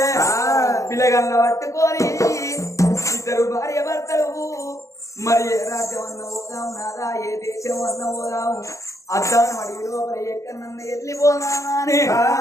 పిల్లగల్ల పట్టుకొని ఇద్దరు భార్య భర్తలు మరి ఏ రాజ్యం అన్న పోదాం నాదా, ఏ దేశం అన్న పోదాము, అద్దాను అడిగి లోపల ఎక్కడన్న వెళ్ళిపోదామని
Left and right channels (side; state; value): right; late; 0.15 ms